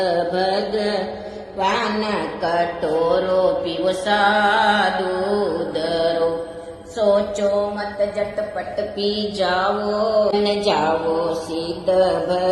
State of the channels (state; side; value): identical; both; correlation 1.00